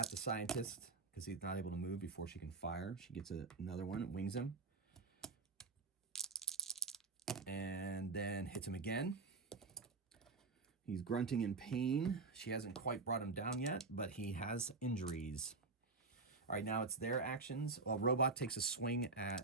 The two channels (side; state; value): left; quieter; 3.9 dB